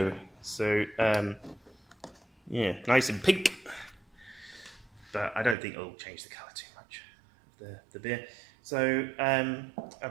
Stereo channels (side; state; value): left; drops out; at 5.6 s